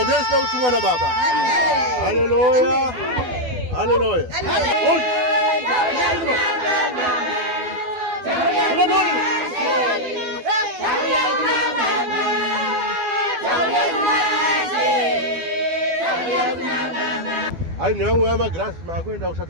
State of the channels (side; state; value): left; late; 12 ms